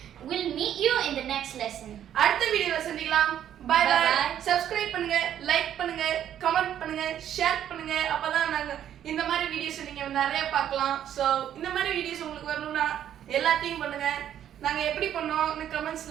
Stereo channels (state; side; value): quieter; left; 10.4 dB